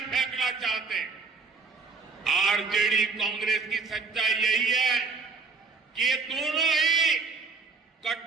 फेंकना चाहते हैं। आरजेडी कांग्रेस की सच्चाई यही है कि ये दोनों ही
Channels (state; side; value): quieter; left; 4.6 dB